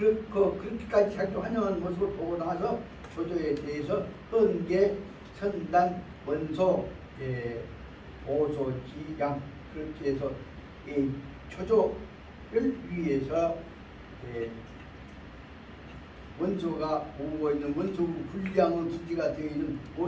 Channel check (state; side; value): identical; both; correlation 1.00